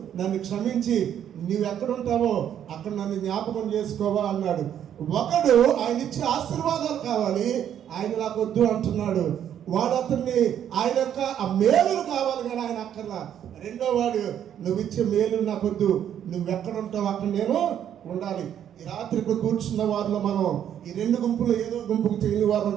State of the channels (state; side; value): quieter; left; 9.8 dB